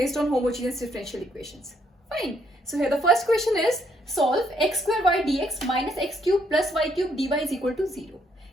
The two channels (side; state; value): both; normal; correlation 0.71